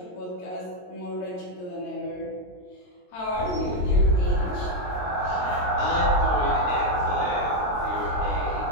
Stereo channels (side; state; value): right; late; 22 ms